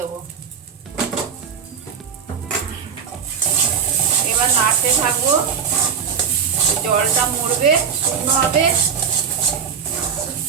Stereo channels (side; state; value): left; quieter; 7.2 dB